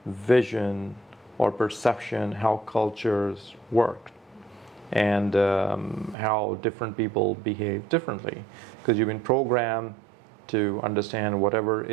vision or perception how cultures work and how different people behave differently, because you've been programmed to understand whatever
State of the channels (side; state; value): left; drops out; at 6.2 s